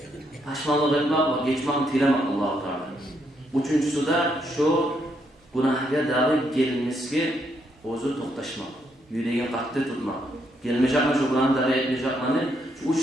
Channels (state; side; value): normal; both; correlation 0.75